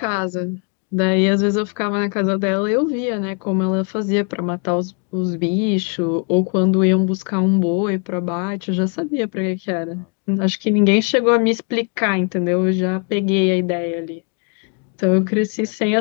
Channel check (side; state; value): right; quieter; 38.6 dB